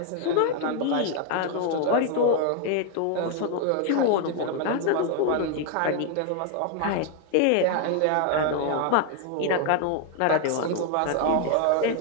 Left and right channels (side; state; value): both; different; correlation 0.00